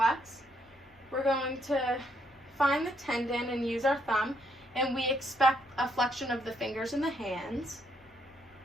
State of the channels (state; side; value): normal; both; correlation 0.73